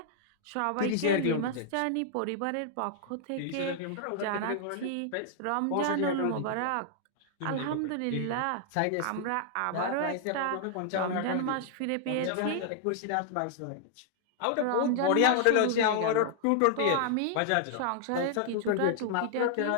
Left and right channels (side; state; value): both; different; correlation -0.01